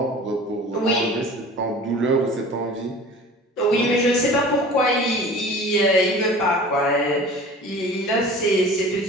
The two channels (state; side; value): normal; both; correlation 0.41